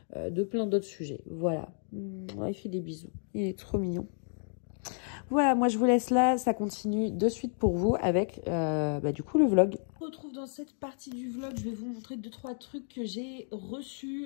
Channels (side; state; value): right; silent; 57 dB below the other